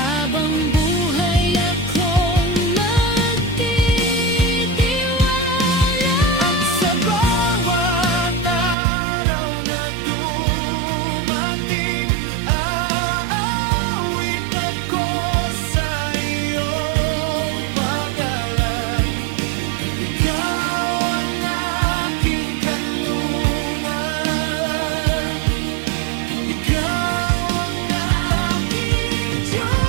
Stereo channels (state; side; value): drops out; left; at 8.8 s